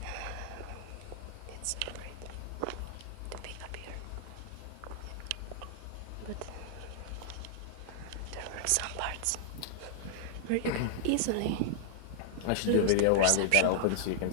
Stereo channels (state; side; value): different; both; correlation -0.01